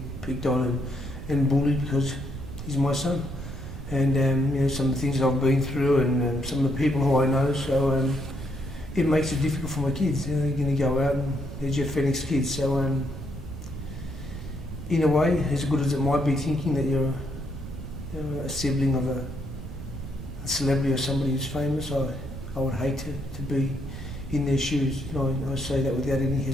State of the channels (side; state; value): right; noise; rumble, 11 dB below the sound